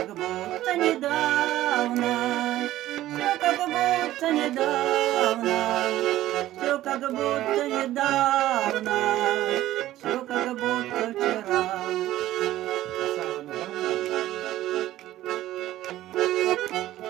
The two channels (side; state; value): left; quieter; 14.6 dB